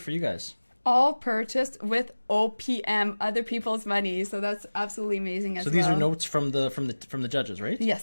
for you guys. All purchased with OPM, other people's money. So that's absolutely amazing as well. So these are notes from the judges, right?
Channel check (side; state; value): both; inverted; correlation -1.00